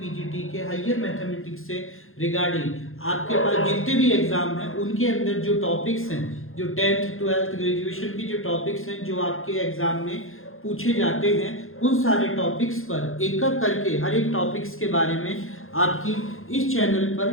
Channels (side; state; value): right; late; 0.60 ms